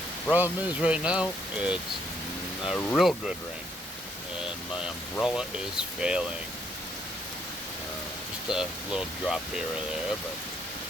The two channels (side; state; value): both; normal; correlation 0.71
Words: Problem is right now, it's a real good rain, and my umbrella is failing. Just a little drop here or there, but